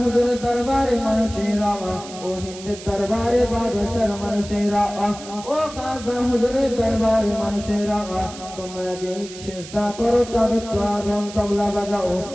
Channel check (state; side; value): noise; right; hiss, 15 dB below the sound